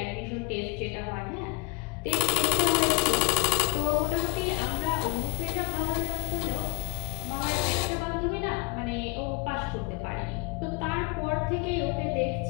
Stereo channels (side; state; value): right; quieter; 29.5 dB